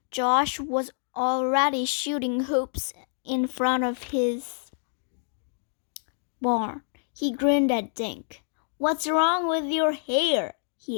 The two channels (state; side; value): silent; right; 60 dB below the other